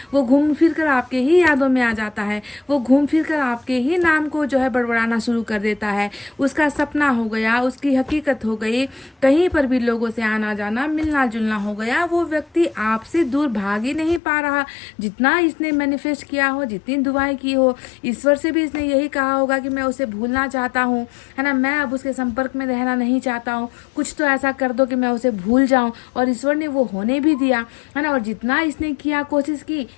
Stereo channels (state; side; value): drops out; right; at 14.2 s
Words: वो घूम फिर कर आपके ही यादों में आ जाता है, वो घूम फिर कर आपके ही नाम को जो है बड़बड़ाना शुरू कर देता है। उसका सपना हो गया, उसकी हकीकत हो गई, कहीं पर भी लोगों से आना जाना मिलना जुलना हो गया। वो व्यक्ति आपसे दूर भाग ही नहीं पा रहा, जितना इसने मैनिफेस्ट किया हो, जितनी दुआएं की हो, ईश्वर से भी इसने यही कहा होगा कि मैं उसे भूलना चाहता हूँ, है ना, मैं अब उसके संपर्क में रहना नहीं चाहता हूँ, कुछ तो ऐसा कर दो कि मैं उसे भूल जाऊं। और ईश्वर ने वो होने भी दिया, है ना। और जितना इसने किया, कोशिश की,